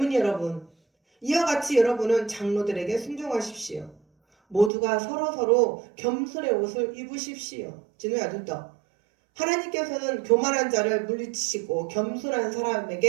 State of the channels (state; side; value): drops out; left; at 4.7 s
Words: 여러분, 이와 같이 여러분은 장로들에게 순종하십시오. 모두가 서로서로 겸손의 옷을 입으십시오. 진우야, 눈 떠. 하나님께서는 교만한 자를 물리치시고 겸손한